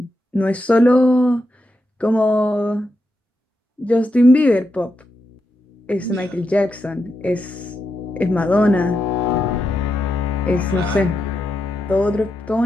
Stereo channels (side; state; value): both; normal; correlation 0.85